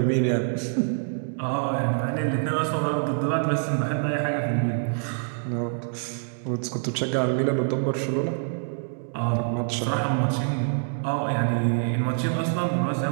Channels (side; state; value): left; silent; digital silence